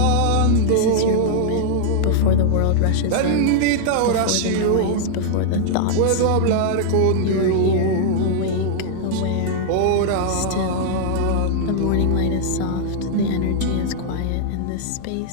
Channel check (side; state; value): both; different; correlation -0.01